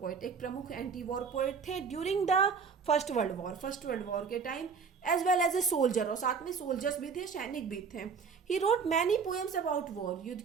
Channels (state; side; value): quieter; left; 5.7 dB